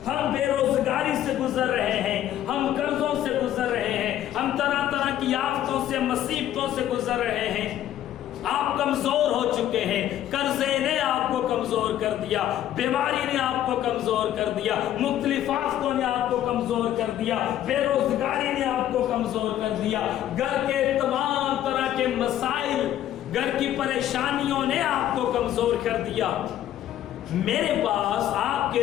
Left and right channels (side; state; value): right; quieter; 11.9 dB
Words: ہم بے روزگاری سے گزر رہے ہیں، ہم قرضوں سے گزر رہے ہیں، ہم طرح طرح کی آفتوں سے، مصیبتوں سے گزر رہے ہیں۔ آپ کمزور ہو چکے ہیں، قرضے نے آپ کو کمزور کر دیا، بیماری نے آپ کو کمزور کر دیا، مختلف آفتوں نے آپ کو کمزور کر دیا، بے روزگاری نے آپ کو کمزور کر دیا، گھر کے تمام طرح کے مسائل، گھر کی پریشانیوں نے آپ کو کمزور کر دیا۔ میرے پاس آپ کے